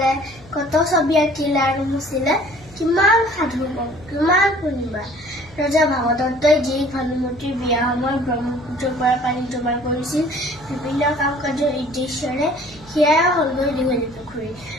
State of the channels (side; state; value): left; noise; hum, 23 dB below the sound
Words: কত ছবি আঁকিলে আৰু মুচিলে, কিমান সাধু কম, কিমান শুনিবা। ৰজা ভাগদত্তই যি ভানুমতীৰ বিয়া সময়ত ব্ৰহ্মপুত্ৰৰ পৰা পানী জমা কৰিছিল বিভিন্ন কাম কাজৰ উদ্দেশ্যৰে, সেয়াই হলগৈ দীঘলীপুখুৰী।